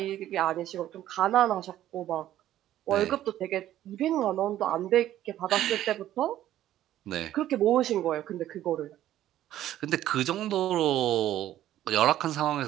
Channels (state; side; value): quieter; left; 12.8 dB